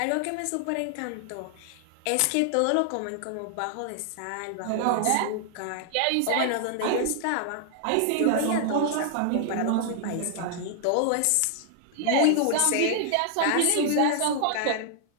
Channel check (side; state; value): both; different; correlation 0.00